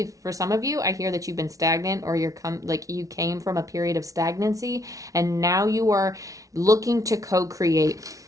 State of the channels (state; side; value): late; left; 0.17 ms